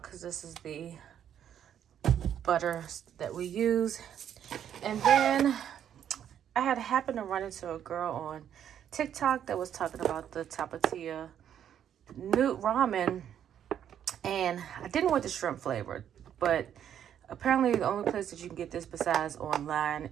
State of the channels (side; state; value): left; quieter; 9.6 dB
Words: because this is the butter that we use. And then I had happened to run into a girl on TikTok that was talking about the Tapatía Newt ramen, and I didn't want the shrimp flavor, but apparently the only place that you can get this besides online